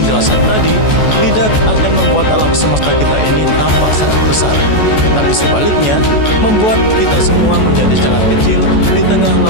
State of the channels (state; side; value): late; right; 14 ms